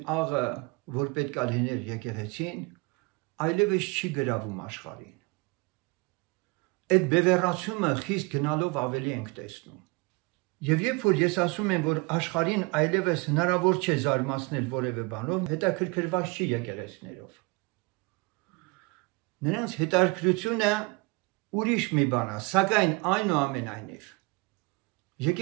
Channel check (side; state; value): left; quieter; 27.0 dB